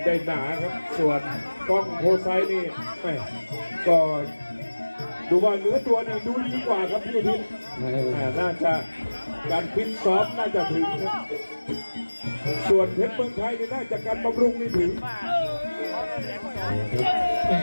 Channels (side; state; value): both; inverted; correlation -1.00